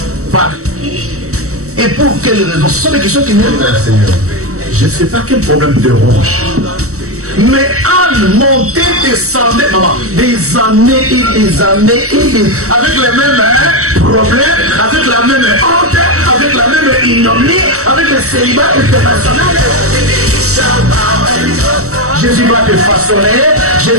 Par qui? Et pour quelles raisons? Ce sont des questions qui viennent vers le Seigneur. Je ne sais pas quel problème te ronge. Mais Anne montait, descendait, maman, des années et des années et des... avec les mêmes problèmes, avec la même honte, avec la même ignominie, avec le célibat international. Jésus va te façonner,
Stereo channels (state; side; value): late; left; 0.65 ms